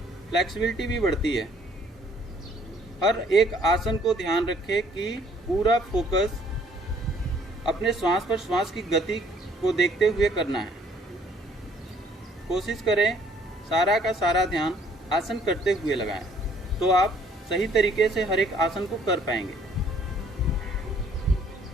फ्लेक्सिबिलिटी भी बढ़ती है। हर एक आसन को ध्यान रखें कि पूरा फोकस अपने श्वास पर, श्वास की गति को देखते हुए करना है। कोशिश करें सारा का सारा ध्यान आसन करते हुए लगाएं, तो आप सही तरीके से हर एक आसन को कर पाएंगे।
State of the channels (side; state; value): both; normal; correlation 0.61